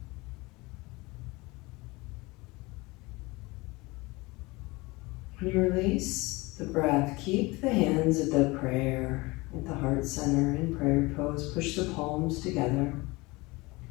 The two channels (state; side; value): quieter; right; 23.4 dB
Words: When you release the breath, keep the hands at the prayer, at the heart center in prayer pose. Push the palms together.